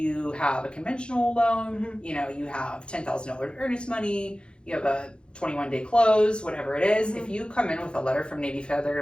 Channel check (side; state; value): right; late; 0.054 ms